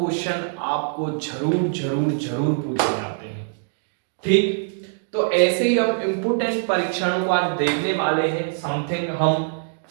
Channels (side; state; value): left; silent; digital silence